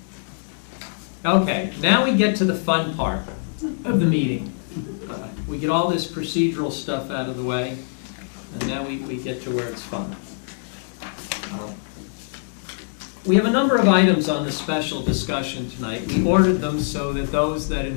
Okay, now we get to the fun part of the meeting. We get all this procedural stuff out of the way, and now we get to where it's fun. We have a number of items on the special discussion tonight. We ordered them so that those that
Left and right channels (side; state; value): right; silent; digital silence